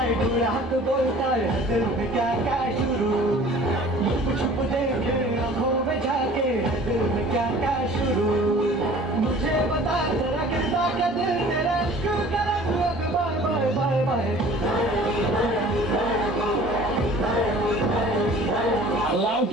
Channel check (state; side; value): normal; both; correlation 0.47